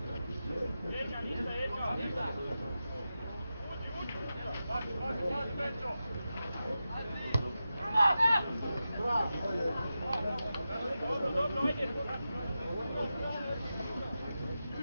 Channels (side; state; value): both; inverted; correlation -0.91